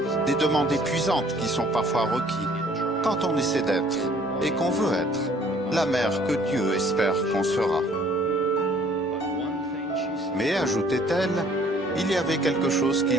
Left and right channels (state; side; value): normal; both; correlation 0.57